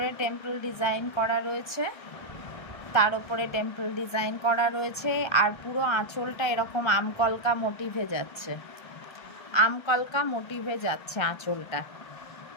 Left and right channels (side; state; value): right; late; 1.3 ms